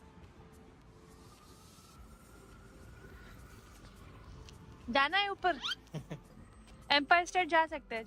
जाना है ऊपर। एम्पायर स्टेट जा सकते हैं,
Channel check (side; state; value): both; identical; correlation 1.00